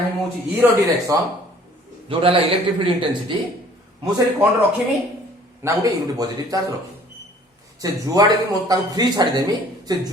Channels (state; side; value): normal; both; correlation 0.54